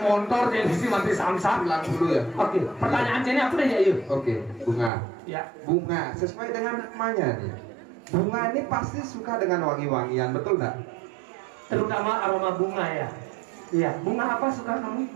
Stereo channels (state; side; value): drops out; left; at 4.9 s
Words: motor jadi sih mati samsat. 90 ya. Oke, pertanyaan sini apa deh ya yuk? Oke, Bunga. Ya. Bunga sesuai dengan namanya nih. Bunga ini pasti suka dengan wangi-wangian, betul nggak? Terutama aroma bunga ya. Iya, bunga apa suka kamu?